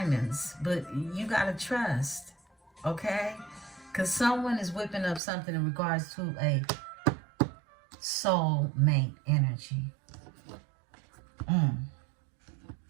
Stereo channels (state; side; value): drops out; left; at 5.2 s